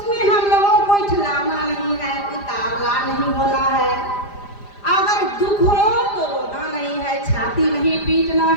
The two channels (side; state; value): right; late; 5.0 ms